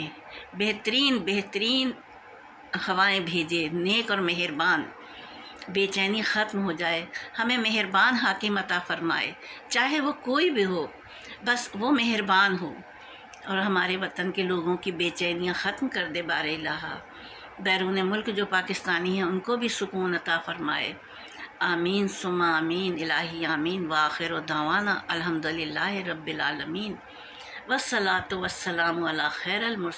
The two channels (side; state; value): both; identical; correlation 1.00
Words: بہترین ہوائیں بھیجے، نیک اور مہربان، بے چینی ختم ہو جائے، ہمیں مہربان حاکم عطا فرمائے، چاہے وہ کوئی بھی ہو، بس وہ مہربان ہو، اور ہمارے وطن کے لوگوں کی بے چینیاں ختم کر دے بار الہ۔ بیرون ملک جو پاکستانی ہیں ان کو بھی سکون عطا فرمائے۔ آمین ثم آمین، الہی آمین۔ وآخر دعوانا الحمدللہ رب العالمین، والصلاۃ والسلام علی خیر